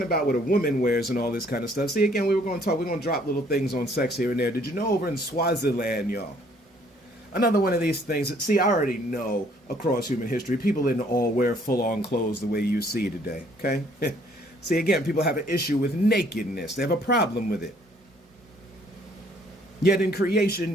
about what a woman wears and all this kind of stuff. See, again, we're going to drop little things on sex here and there. Did you know over in Swaziland, y'all? Another one of these things. See, I already know across human history, people didn't all wear full-on clothes the way you see today, okay? See, again, people have an issue with nakedness. They have a problem with it. Yet in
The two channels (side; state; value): both; normal; correlation 0.62